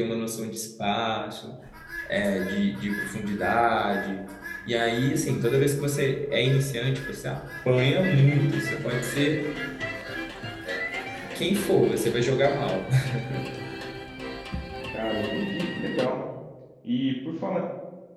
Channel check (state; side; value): identical; both; correlation 1.00